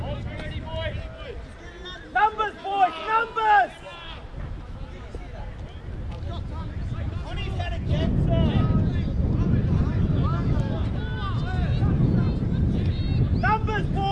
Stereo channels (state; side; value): identical; both; correlation 1.00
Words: Numbers, boys! Numbers! On his head again, sir! Numbers,